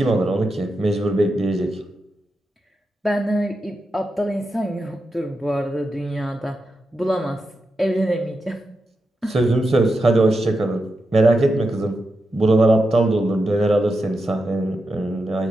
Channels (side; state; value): both; normal; correlation 0.88